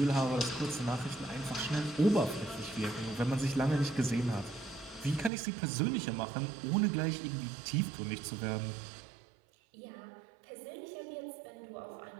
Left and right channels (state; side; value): drops out; left; at 5.3 s